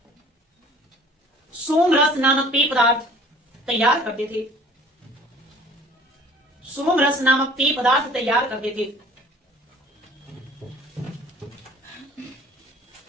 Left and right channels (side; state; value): both; normal; correlation 0.50